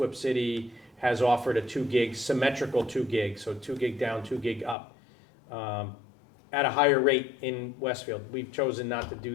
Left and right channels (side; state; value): right; drops out; at 4.8 s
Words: City has offered a 2 gig, symmetrical 2 gig, so 2 gig down, 2 gig up, at a higher rate in Westfield. We've chosen not to do